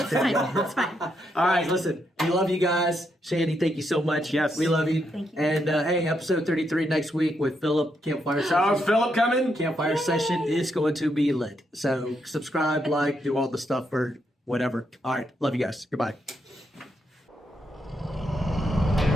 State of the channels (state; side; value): normal; both; correlation 0.79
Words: too. That's fine. All right, listen, we love you guys. Sandy, thank you so much. Yes. We love you. Thank you. And hey, episode 33 next week with Philip Campfire Oh, Session. Philip coming? Campfire Session is going to be lit. So subscribe, like, do all the stuff or whatever. All right, love you guys. Goodbye.